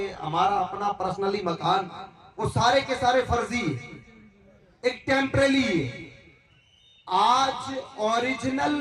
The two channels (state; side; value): identical; both; correlation 1.00